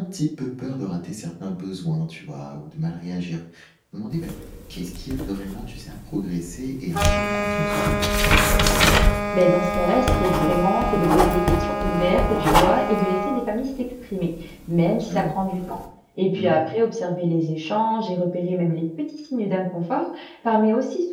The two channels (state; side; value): identical; both; correlation 1.00